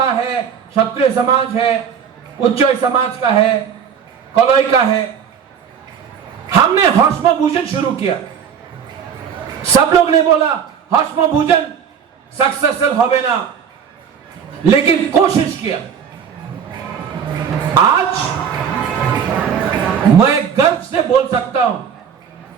है, क्षत्रिय समाज है, उच्चोय समाज का है, कलोई का है। हमने हौष्म भोजन शुरू किया। सब लोग ने बोला हौष्म भोजन सक्सेसफुल होवे ना, लेकिन कोशिश किया। आज मैं गर्व से बोल सकता हूं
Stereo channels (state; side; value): quieter; left; 7.5 dB